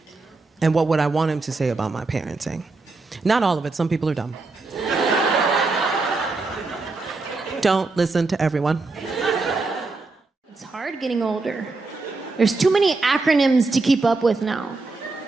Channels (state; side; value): quieter; left; 3.6 dB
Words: And what would I want him to say about my parenting? Not all of it. Some people are dumb. Don't listen to everyone. It's hard getting older. There's too many acronyms to keep up with now.